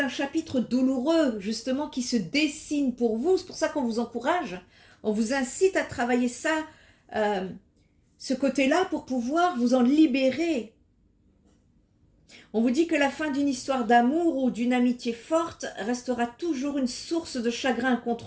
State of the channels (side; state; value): both; identical; correlation 1.00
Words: chapitre douloureux, justement, qui se dessine pour vous. C'est pour ça qu'on vous encourage. On vous incite à travailler ça, ce côté-là, pour pouvoir vous en libérer. On vous dit que la fin d'une histoire d'amour ou d'une amitié forte restera toujours une source de chagrin